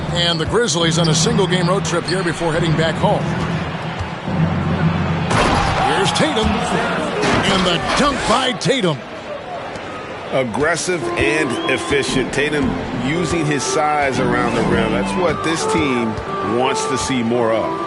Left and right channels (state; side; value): identical; both; correlation 1.00